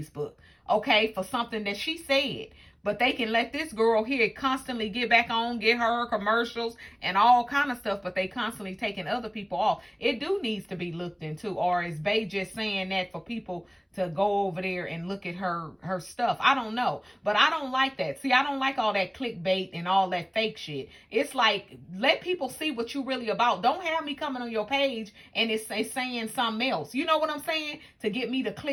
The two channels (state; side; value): identical; both; correlation 1.00